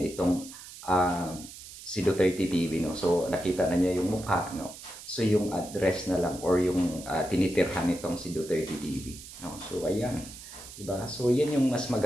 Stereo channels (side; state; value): right; noise; hiss, 15 dB below the sound